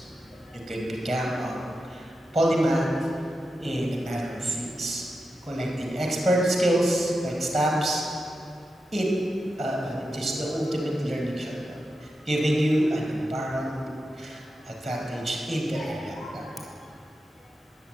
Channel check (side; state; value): both; normal; correlation 0.89